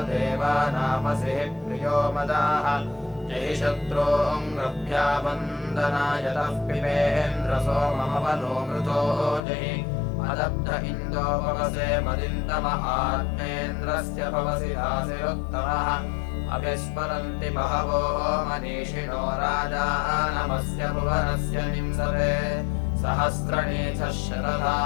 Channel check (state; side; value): drops out; right; at 9.4 s